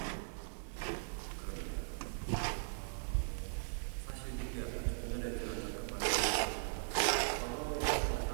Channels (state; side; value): silent; left; digital silence